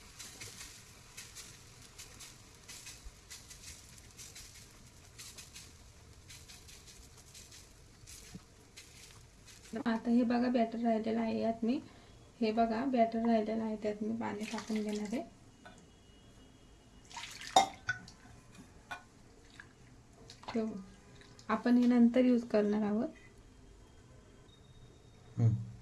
आता हे बघा बॅटर राहिलेलं आहे, यात मी हे बघा बॅटर राहिलेलं आहे, त्यात मी पाणी टाकून घेणार आहे। ठेवू, आपण हे नंतर यूज करणार आहोत।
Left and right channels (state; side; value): identical; both; correlation 1.00